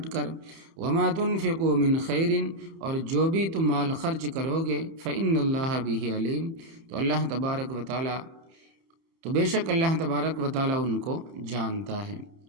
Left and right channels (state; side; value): late; left; 31 ms